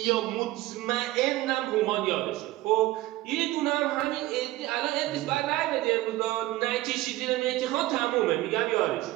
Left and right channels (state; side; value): quieter; left; 17.3 dB